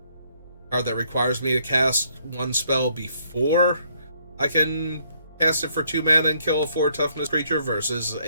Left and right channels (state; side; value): inverted; both; correlation -0.68